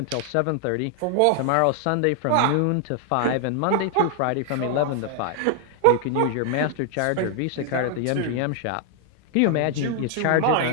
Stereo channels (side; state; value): both; different; correlation 0.00